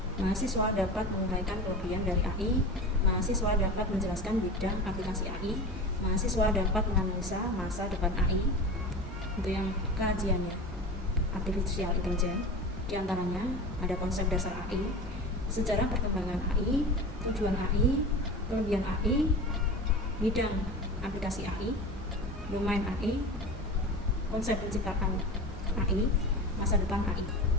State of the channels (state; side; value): normal; both; correlation 0.31